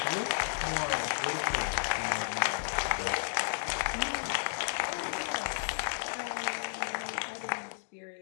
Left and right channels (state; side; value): silent; right; digital silence